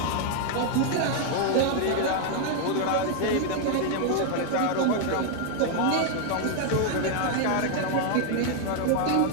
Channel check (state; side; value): different; both; correlation 0.00